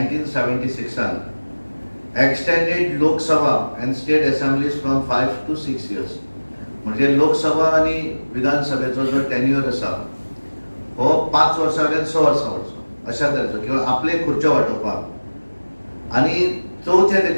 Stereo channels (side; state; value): both; inverted; correlation -1.00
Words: extended Lok Sabha and state assemblies from 5 to 6 years. म्हणजे लोकसभा आणि विधानसभेचो जो टेन्युअर आसा हो 5 वर्सां वयल्यान 6 वर्सां वरचो अशा तरेचो किंवा आपले खुर्च्यो वाटोवपाक. आणि चौथे